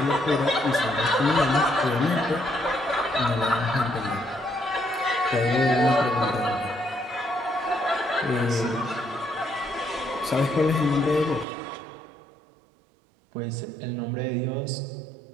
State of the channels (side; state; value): left; drops out; at 11.5 s